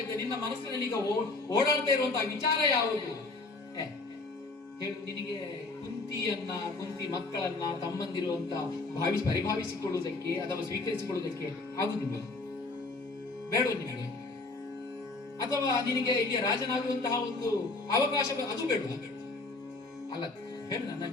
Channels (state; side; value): quieter; right; 3.3 dB